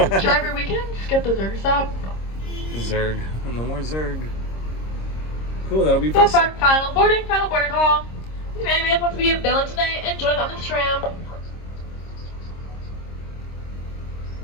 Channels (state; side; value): late; right; 26 ms